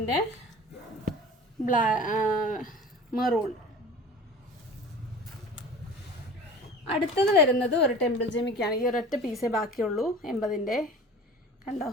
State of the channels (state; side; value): normal; both; correlation 0.40